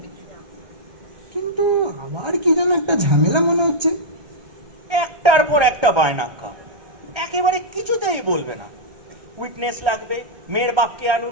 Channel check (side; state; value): left; late; 1.3 ms